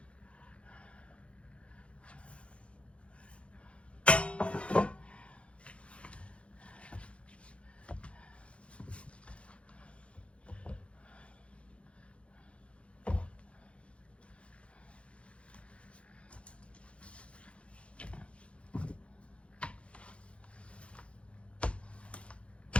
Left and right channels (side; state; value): right; late; 0.061 ms